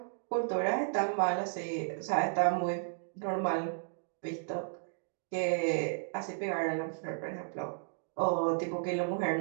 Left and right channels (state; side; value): silent; left; digital silence